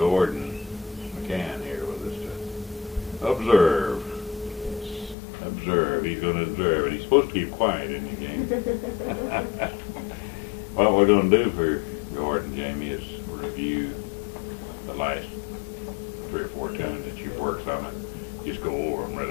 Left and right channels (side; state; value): right; drops out; at 5.2 s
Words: McCann here with us to observe. Observe. He's going to observe. And he's supposed to keep quiet in the game. What we're going to do for Gordon, Jamie, is review the last 3 or 4 tunes that you've worked on it. Just go over them